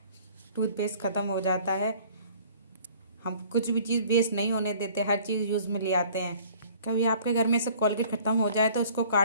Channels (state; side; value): inverted; both; correlation -0.53